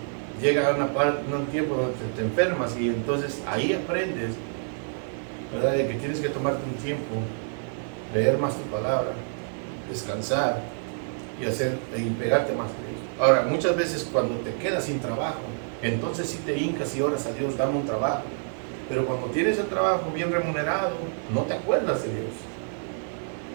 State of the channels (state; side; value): silent; left; digital silence